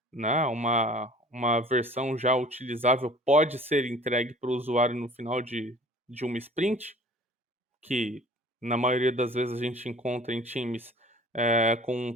né, uma versão já utilizável pode ser entregue para o usuário no final de uma sprint, que na maioria das vezes a gente encontra em times com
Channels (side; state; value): both; normal; correlation 0.48